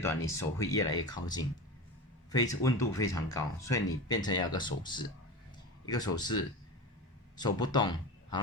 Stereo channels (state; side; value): normal; both; correlation 0.27